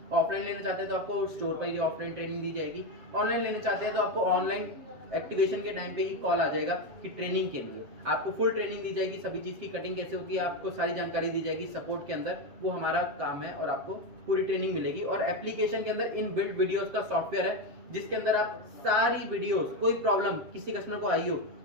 ऑफलाइन लेना चाहते हैं तो आपको स्टोर पर ही ऑफलाइन ट्रेनिंग दी जाएगी, ऑनलाइन लेना चाहते हैं तो आपको ऑनलाइन एक्टिवेशन के टाइम पे ही कॉल आ जाएगा कि ट्रेनिंग के लिए आपको फुल ट्रेनिंग दी जाएगी, सभी चीज की कटिंग कैसे होती है आपको सारी जानकारी दी जाएगी सपोर्ट के अंदर, वो हमारा काम है और आपको पूरी ट्रेनिंग मिलेगी। और एप्लीकेशन के अंदर इन बिल्ट वीडियोस का सॉफ्टवेयर है जिसके अंदर आप सारी वीडियोस, कोई प्रॉब्लम किसी कस्टमर को आई हो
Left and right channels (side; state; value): left; late; 7.6 ms